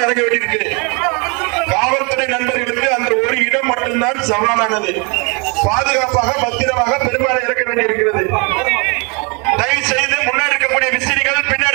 இறங்க வேண்டியிருக்கு. காவல்துறை நண்பர்களுக்கு அந்த ஒரு இடம் மட்டும்தான் சவாலானது. பாதுகாப்பாக பத்திரமாக பெரும்பாலும் இறக்க வேண்டியிருக்கிறது. தயவு செய்து முன்னாடி இருக்கக்கூடிய விசிறிகள்,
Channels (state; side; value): quieter; left; 31.9 dB